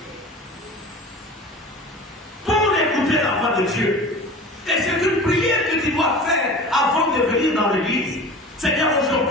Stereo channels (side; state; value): both; normal; correlation 0.37